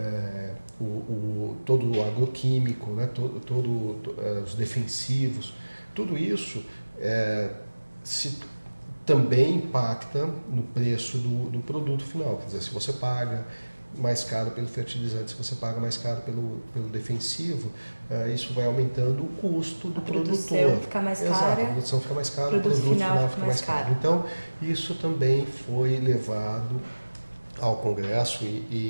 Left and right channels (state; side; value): inverted; both; correlation -1.00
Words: todo o agroquímico, né? Os defensivos, tudo isso também impacta no preço do produto final. Quer dizer, se você paga mais caro pelo fertilizante, se você paga mais caro pelo defensivo, isso vai aumentando o custo do produtor. A produção fica mais cara. Exato, a produção fica mais cara, o produto final fica mais caro. Então, isso também foi levado ao Congresso